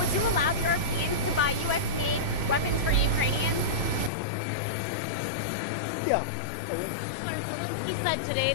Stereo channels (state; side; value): drops out; right; at 4.1 s